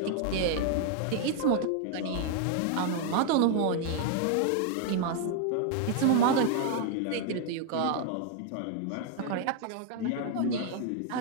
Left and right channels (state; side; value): different; both; correlation 0.00